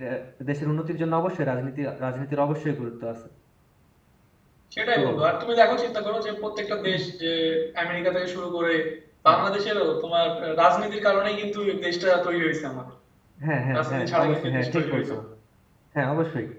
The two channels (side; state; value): both; identical; correlation 1.00